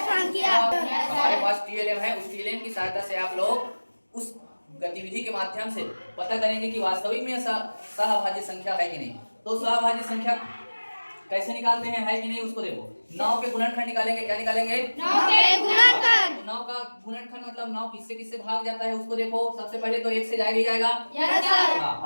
संख्या। हमारे पास टीएलएम है, उस टीएलएम की सहायता से आप लोग उस गतिविधि के माध्यम से पता करेंगे कि वास्तविक में सहाभाज्य संख्या है कि नहीं। तो सहाभाज्य संख्या कैसे निकालते हैं, है कि नहीं, उसको देखो। 9 के गुणनखंड निकालेंगे, क्या निकालेंगे? 9 के गुणनखंड। 9 का गुणनखंड मतलब 9 किससे किससे भाग जाता है उसको देखो। सबसे पहले तो 1 से जाएगा ही जाएगा। Yes sir. हाँ,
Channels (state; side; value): inverted; both; correlation -1.00